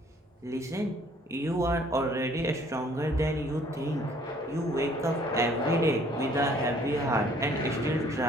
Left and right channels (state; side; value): normal; both; correlation 0.59